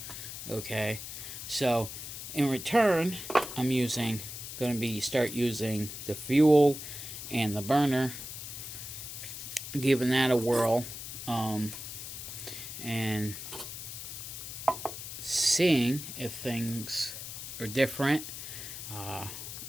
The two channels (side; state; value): left; noise; hiss, 9 dB below the sound